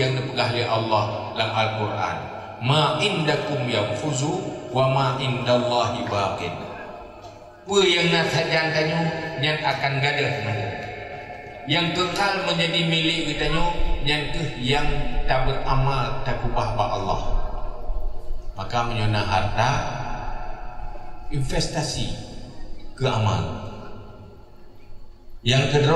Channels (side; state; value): both; identical; correlation 1.00